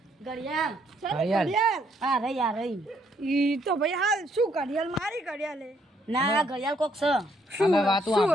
ઘડિયાળ ઘડિયાળ. હા રહી આ રહી ઈ તો ભાઈ હાલ શું ઘડિયાળ મારી ઘડિયાળ હે. ના આ ઘડિયાળ કોક છે અમે વાતો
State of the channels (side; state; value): both; normal; correlation 0.70